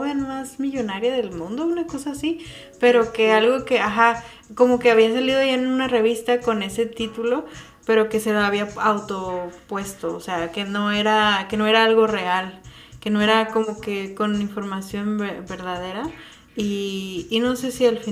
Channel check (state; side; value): identical; both; correlation 1.00